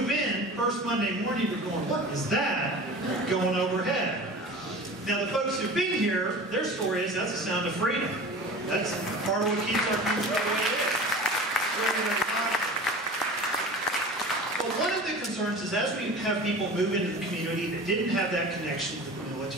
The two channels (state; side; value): normal; both; correlation 0.37